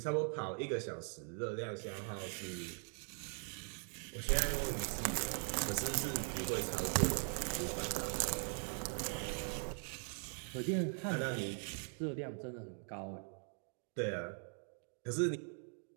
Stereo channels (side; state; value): left; silent; 50 dB below the other